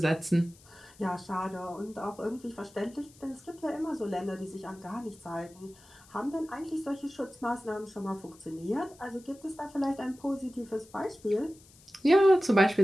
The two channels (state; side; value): noise; left; hiss, 25 dB below the sound